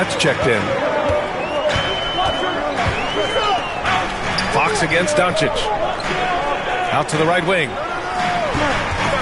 checked in. Fox against Doncic. Out to the right wing.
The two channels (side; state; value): both; identical; correlation 1.00